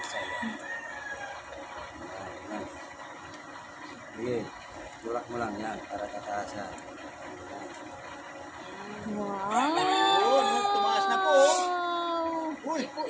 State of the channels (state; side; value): identical; both; correlation 1.00